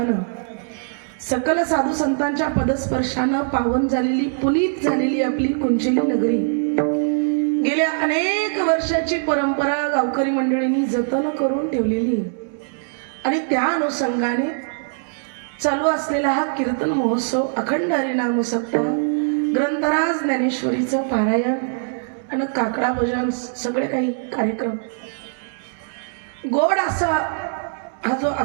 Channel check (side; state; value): left; silent; digital silence